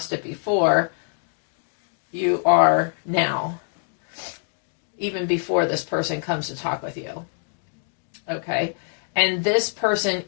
it before, you are now. Even before this person comes to talk with you. Okay? And this person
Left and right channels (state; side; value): silent; right; digital silence